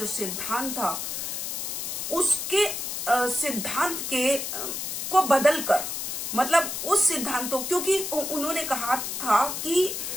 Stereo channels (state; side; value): noise; left; hiss, 4 dB below the sound